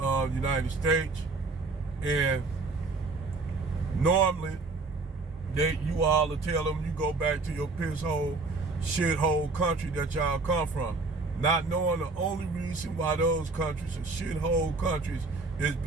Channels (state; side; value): quieter; left; 3.7 dB